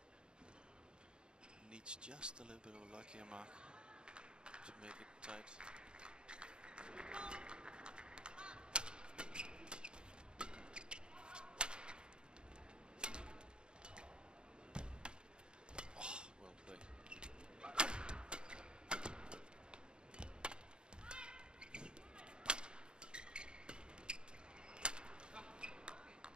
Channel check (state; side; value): late; left; 0.050 ms